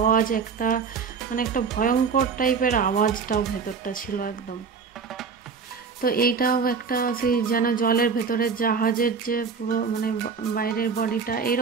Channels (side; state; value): left; quieter; 5.6 dB